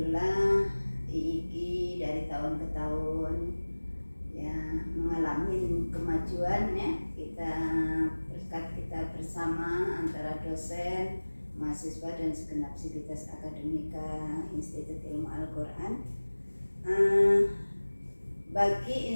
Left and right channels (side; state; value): both; inverted; correlation -1.00